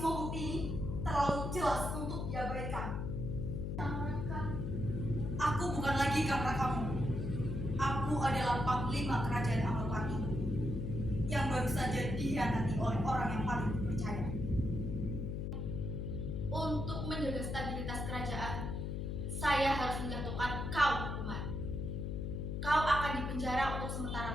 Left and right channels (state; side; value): noise; left; hum, 2 dB below the sound